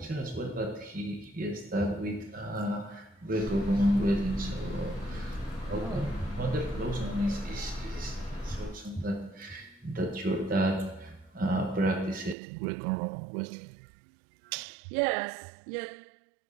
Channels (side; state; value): left; drops out; at 12.4 s